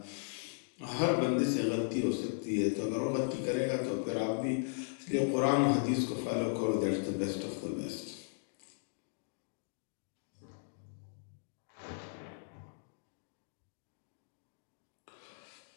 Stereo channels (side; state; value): right; silent; digital silence